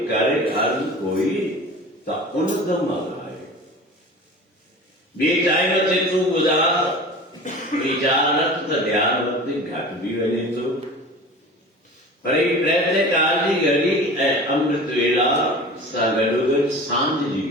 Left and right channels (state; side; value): normal; both; correlation 0.37